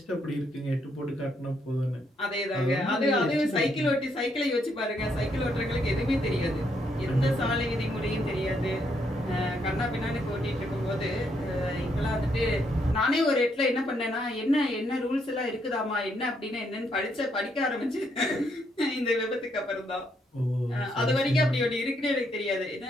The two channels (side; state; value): both; normal; correlation 0.75